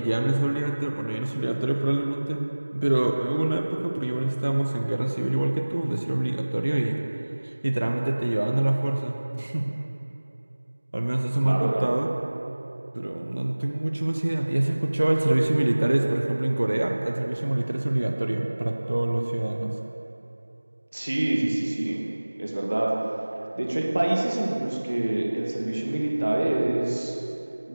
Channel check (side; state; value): both; inverted; correlation -1.00